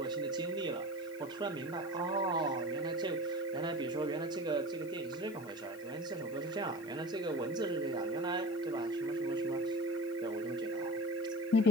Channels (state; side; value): noise; left; hiss, 22 dB below the sound